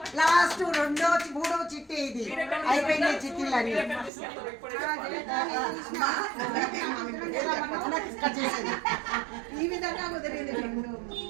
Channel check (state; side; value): drops out; left; at 4.1 s